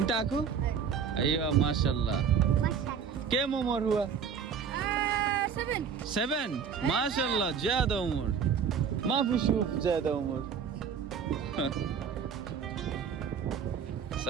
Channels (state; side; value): quieter; left; 6.9 dB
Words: اكو ايوه ما شاء الله ما شاء الله. كم عمر هو 7. 7 ما شاء الله زاد عمر ما في شوف زاد عمر